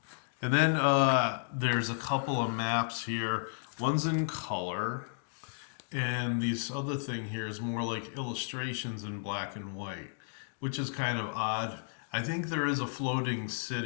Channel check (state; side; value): silent; right; digital silence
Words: and then there's a couple of maps here. One's in color, and this other thing here is more like illustrations in black and white, which is kind of odd. I think there is a floating